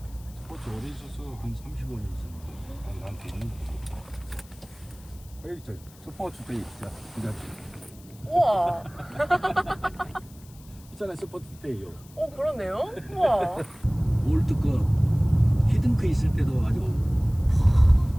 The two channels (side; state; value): left; noise; hiss, 24 dB below the sound